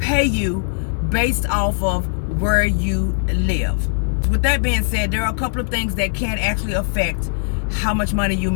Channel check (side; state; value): right; silent; digital silence